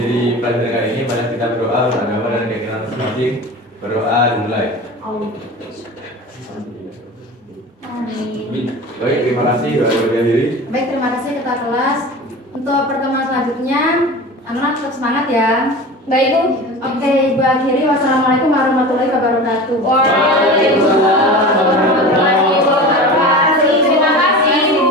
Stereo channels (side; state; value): both; normal; correlation 0.33